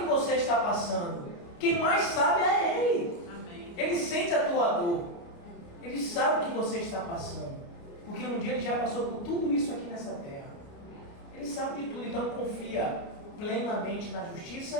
você está passando. Quem mais sabe é Ele. Amém. Ele sente a tua dor. Ele sabe o que você está passando. Porque um dia Ele já passou por tudo isso aqui nessa terra. Ele sabe de tudo. Então confia plenamente na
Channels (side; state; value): right; late; 29 ms